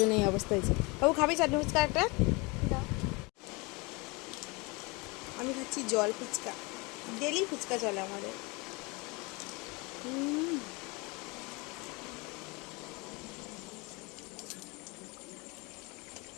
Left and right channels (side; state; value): right; quieter; 27.4 dB